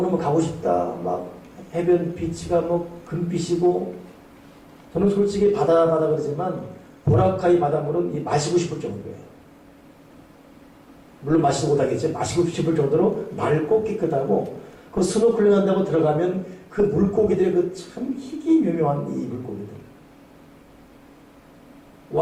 가고 싶다. 막 해변 비치가 뭐 금빛이고 저는 솔직히 바다 그러지만 보라카이 바닷물은 마시고 싶을 정도예요. 물론 마시지 못하겠죠. 마시고 싶을 정도로 맑고 깨끗하고 그 스노클링 한다고 들어가면 그 물고기들의 그 참 희귀묘묘한 이 물고기들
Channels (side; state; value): both; identical; correlation 1.00